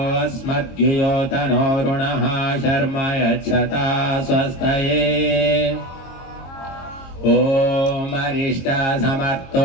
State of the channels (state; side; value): late; right; 22 ms